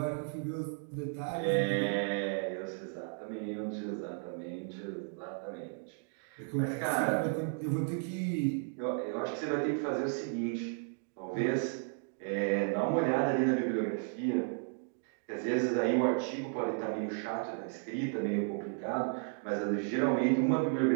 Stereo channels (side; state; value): left; silent; 55 dB below the other